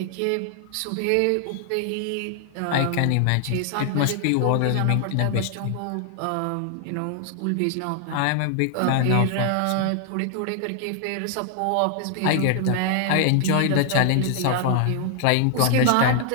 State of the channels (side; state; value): both; different; correlation 0.00